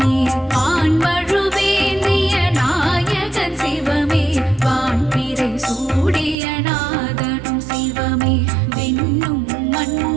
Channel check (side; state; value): left; drops out; at 6.4 s